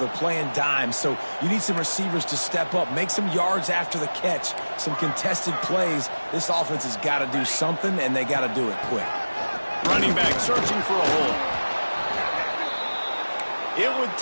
playing dime. So you need some receivers to step up, make some yards after the catch, some contested plays. This offense has got to do something, and they got to do it quick. Running back searching for a hole. It would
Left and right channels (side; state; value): both; inverted; correlation -1.00